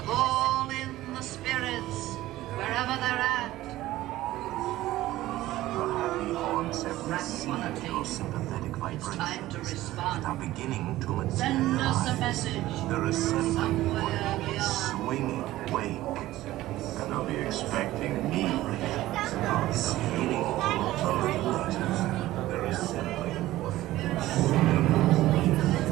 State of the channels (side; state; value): left; quieter; 15.9 dB